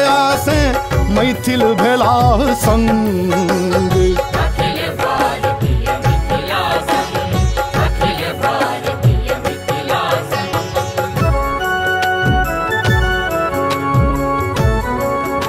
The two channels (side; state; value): both; identical; correlation 1.00